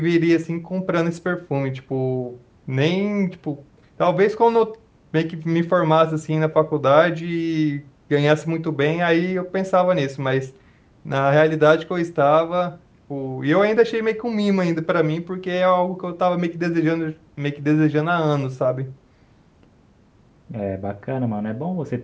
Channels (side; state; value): both; identical; correlation 1.00